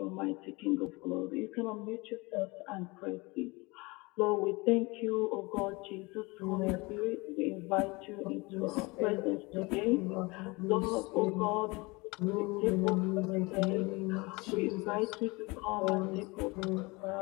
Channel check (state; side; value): quieter; right; 25.2 dB